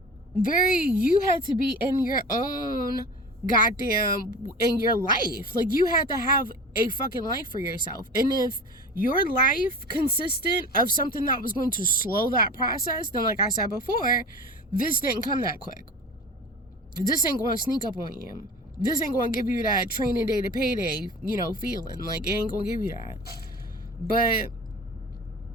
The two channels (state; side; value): normal; both; correlation 0.36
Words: you had to be in your own goddamn, in your life. Like you had to have a fucking life for yourself. And if your life consisted of something that was going to slow that process, then like I said before, this didn't come that quick. This ain't going to sneak up on you. This ain't going to give you that training day to payday, you know, feeling. Like it ain't going to give you that. But